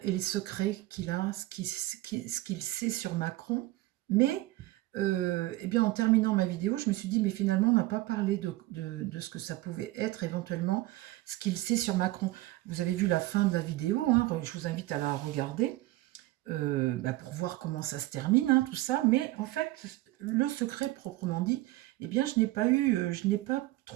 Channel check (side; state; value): left; quieter; 18.0 dB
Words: et les secrets qu'il a, ce qu'il sait sur Macron. Mais eh bien, en terminant ma vidéo, je me suis dit, mais finalement, on n'a pas parlé de ce que ça pouvait être éventuellement, ce qu'il sait sur Macron. Vous avez vu la fin de la vidéo, hein, je vous invite à la regarder. Pour voir comment ça se termine, hein, tout ça. Mais en fait, le secret proprement dit, eh bien, je n'ai pas